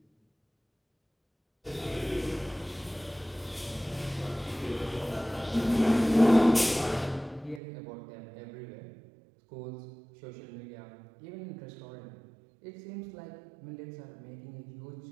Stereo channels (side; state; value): left; drops out; at 7.6 s